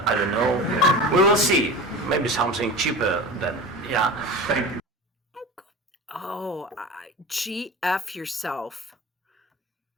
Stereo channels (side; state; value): both; normal; correlation 0.32